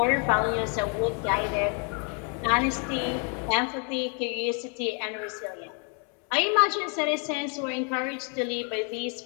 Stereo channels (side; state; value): right; quieter; 38.8 dB